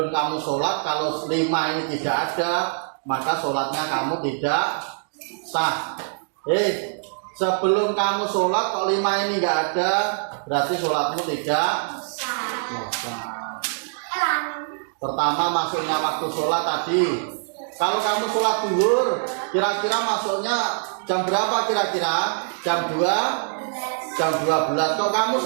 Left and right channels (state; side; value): silent; left; digital silence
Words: kamu sholat, kalau 5 ini tidak ada, maka sholatnya kamu tidak sah. Sebelum kamu sholat kok 5 ini nggak ada, berarti sholatmu tidak sah. Pertama masuknya waktu sholat tadi. Kalau kamu sholat zuhur, kira-kira masuknya jam berapa kira-kira? Jam 2? Jam 12. Kalau kamu